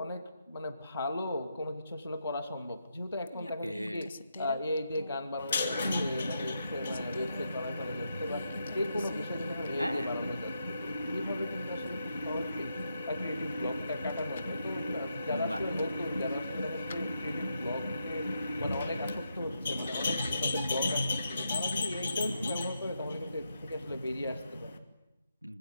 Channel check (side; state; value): both; inverted; correlation -0.83